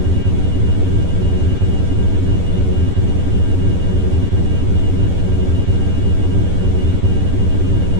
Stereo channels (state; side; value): late; left; 11 ms